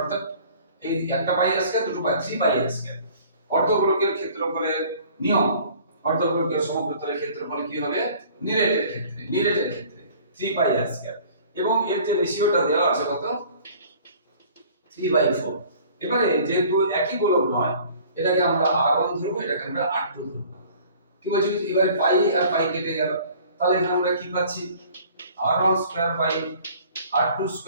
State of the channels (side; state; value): both; inverted; correlation -0.50